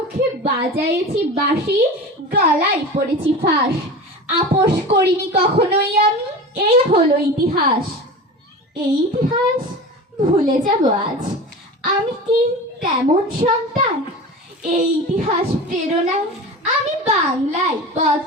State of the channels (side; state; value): both; normal; correlation 0.32